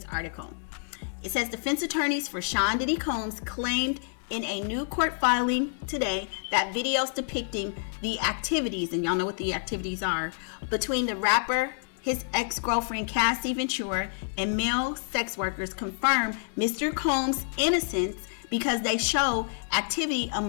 article. It says defense attorneys for Sean Diddy Combs claimed in a new court filing today that videos depicting the activities, and y'all know what the activities are, between the rapper, his ex-girlfriend Cassie Ventura, and male sex workers confirm Mr. Combs' innocence because they show activity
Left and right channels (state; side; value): silent; right; digital silence